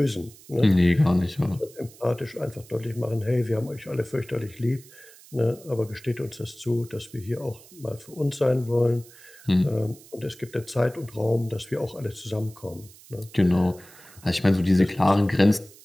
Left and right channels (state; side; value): noise; right; hiss, 22 dB below the sound